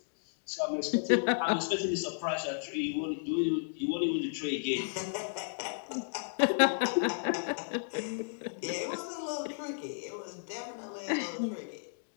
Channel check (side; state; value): right; silent; digital silence